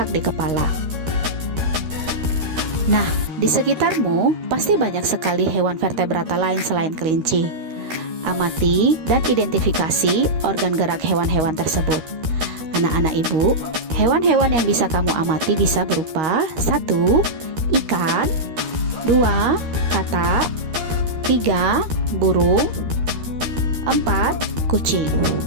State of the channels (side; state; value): left; late; 13 ms